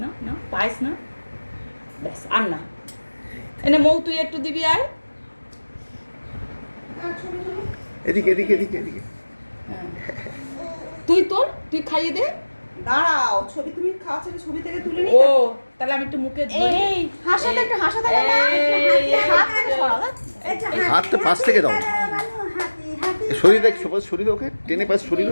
না না পায়েস না, ব্যাস আর না। এনে মৌ তুই একটু দিবি আয়। এদিকে তুই খাইয়ে দে। দাঁড়াও, ছবি তুমি খাওয়া ছেড়ে ছবি থেকে তুলে নি। ও তাহলে আমি একটু মুখে এই হাসাতে একটু হাসাতে না, হাত থেকে সরাও। হাতটা পাশ থেকে দাও, শরীর ওকে টেনে পাশ শরীর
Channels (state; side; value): inverted; both; correlation -1.00